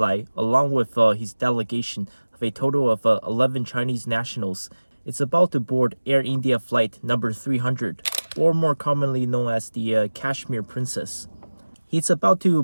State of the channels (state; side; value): inverted; both; correlation -1.00